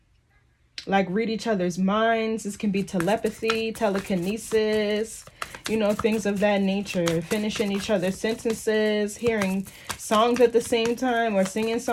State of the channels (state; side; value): identical; both; correlation 1.00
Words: like read each other's minds. This can be telepathy, telekinesis, you know, things of that nature. Finishing each other's sentences, hearing songs at the same time, or singing